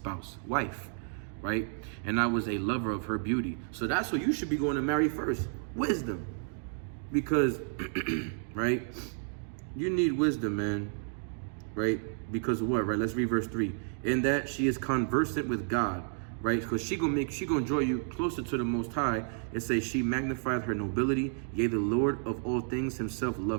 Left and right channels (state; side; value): silent; left; 57 dB below the other